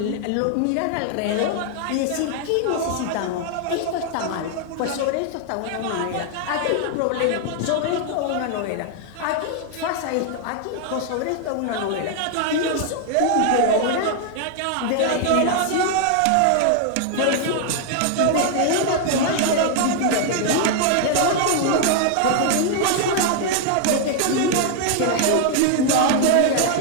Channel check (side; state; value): both; different; correlation 0.00